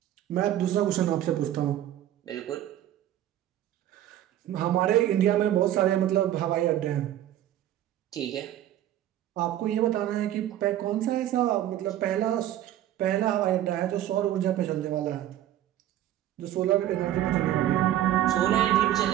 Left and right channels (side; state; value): left; quieter; 12.4 dB